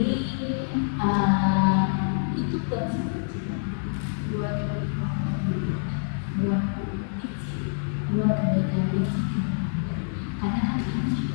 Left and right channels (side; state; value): right; silent; digital silence